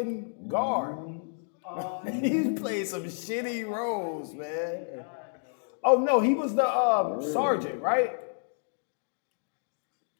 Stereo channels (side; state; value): right; silent; digital silence